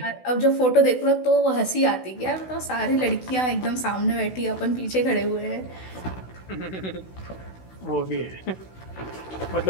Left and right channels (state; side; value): late; right; 16 ms